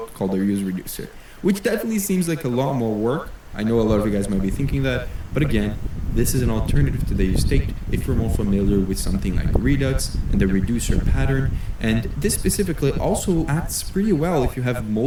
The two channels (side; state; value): both; identical; correlation 1.00